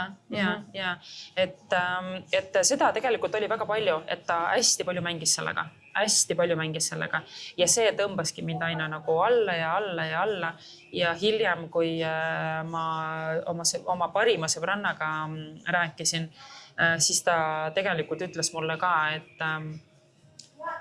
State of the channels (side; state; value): both; identical; correlation 1.00